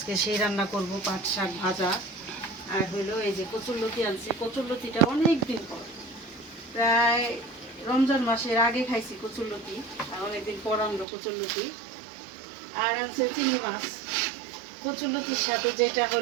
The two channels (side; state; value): left; drops out; at 11.1 s